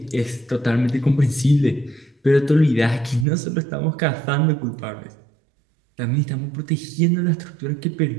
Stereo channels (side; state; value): left; drops out; at 3.2 s